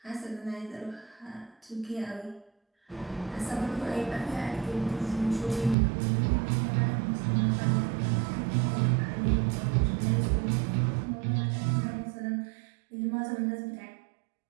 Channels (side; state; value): left; drops out; at 5.8 s